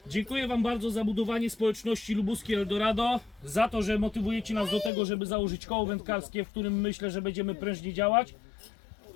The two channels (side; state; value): right; drops out; at 4.9 s